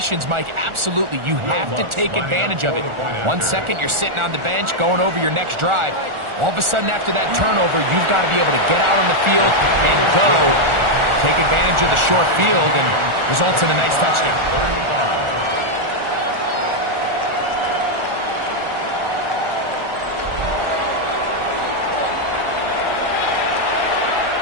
Mike, absolutely, you have to take advantage of it. 1 second, you're sitting on the bench, going over your next drive. All of a sudden, after that turnover, you've got to be able to get out on the field and go. Take advantage of the short field and results in a nice touchdown. 35.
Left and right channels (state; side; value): late; left; 1.4 ms